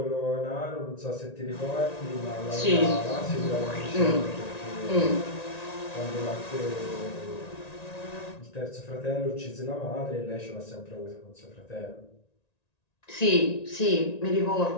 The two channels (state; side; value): late; right; 1.9 ms